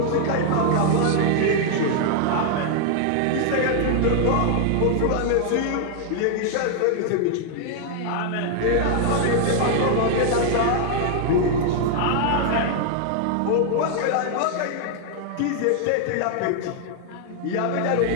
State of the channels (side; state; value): both; different; correlation 0.00